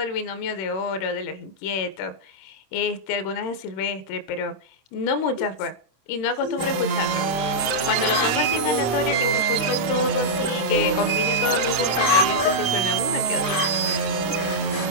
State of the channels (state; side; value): late; right; 25 ms